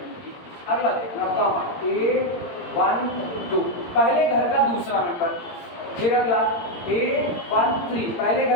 की। अगला देखना कॉमा A1 2 पहले घर का दूसरा मेंबर, फिर अगला A1 3 पहले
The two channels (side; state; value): right; late; 17 ms